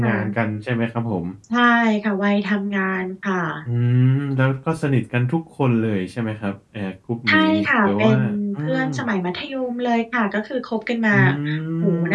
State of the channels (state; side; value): identical; both; correlation 1.00